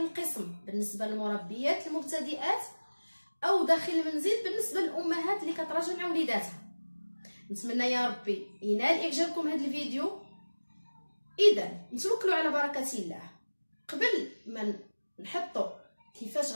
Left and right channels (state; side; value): inverted; both; correlation -1.00